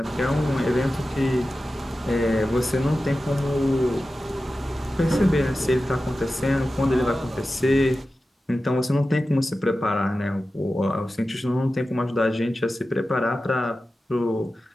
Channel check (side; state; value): both; normal; correlation 0.94